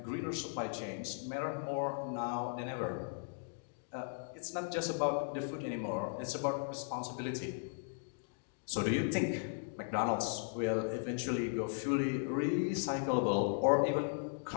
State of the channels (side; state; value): right; silent; digital silence